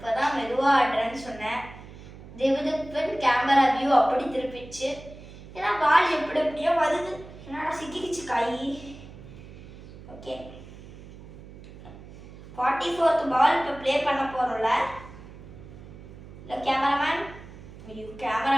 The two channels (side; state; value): right; noise; hum, 17 dB below the sound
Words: மெதுவா ஆடுறேன்னு சொன்னேன். திவ்திப்பன் கேமரா வியூ அப்படி திருப்பிச்சு. ஏன்னா பால் எப்படி எப்படியோ வருது. என்னடா சிக்கிக்கிச்சு கை. ஓகே 44th பால் இப்போ ப்ளே பண்ண போகிறோம்ல. இல்லை கேமராமேன், ஐயோ